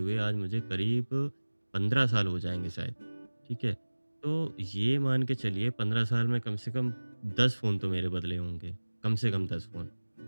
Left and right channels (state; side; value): inverted; both; correlation -1.00